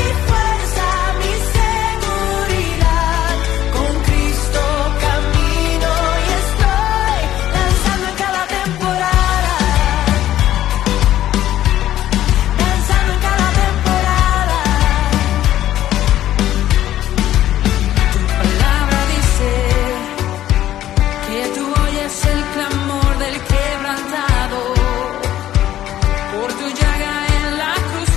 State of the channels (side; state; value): right; quieter; 12.8 dB